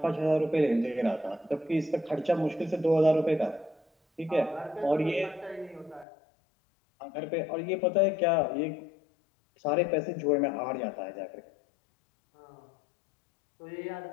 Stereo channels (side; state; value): right; drops out; at 6.1 s